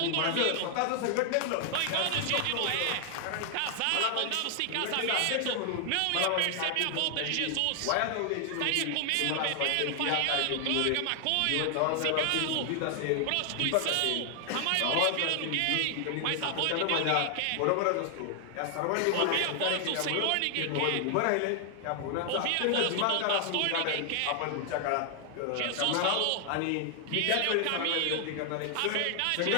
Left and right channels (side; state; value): both; different; correlation 0.00